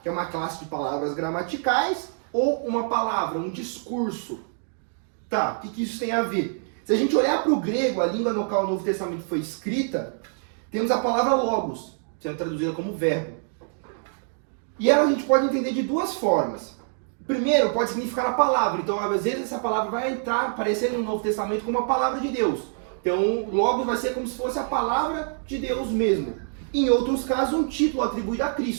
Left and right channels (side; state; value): left; silent; 58 dB below the other